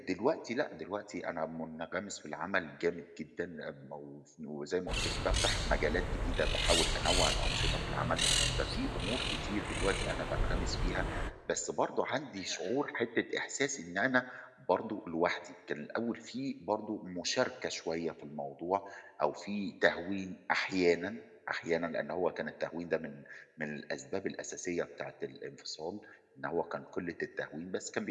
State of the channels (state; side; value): identical; both; correlation 1.00